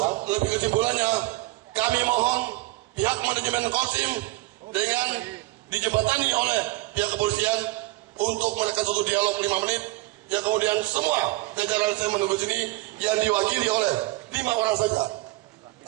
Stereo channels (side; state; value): left; quieter; 19.9 dB